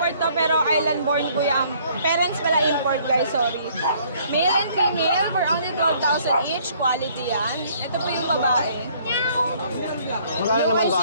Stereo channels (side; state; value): both; inverted; correlation -0.61